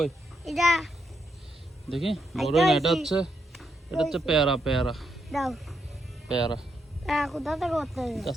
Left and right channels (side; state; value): both; normal; correlation 0.80